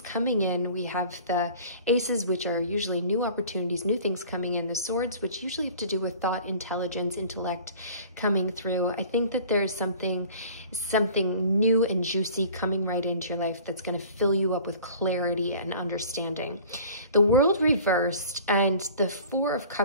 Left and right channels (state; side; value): inverted; both; correlation -0.46